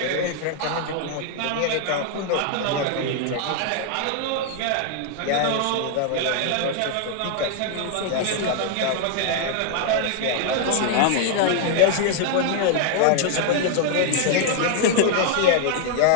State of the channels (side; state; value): both; different; correlation 0.00